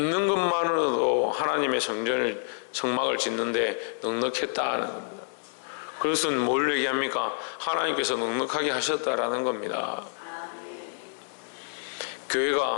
것만으로도 하나님의 성막을 짓는데 넉넉했다는 겁니다. 그것은 뭘 얘기합니까? 하나님께서 넉넉하게 하셨다라는 겁니다.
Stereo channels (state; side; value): silent; right; digital silence